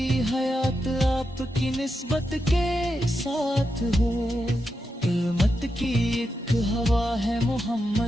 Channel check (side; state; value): both; normal; correlation 0.87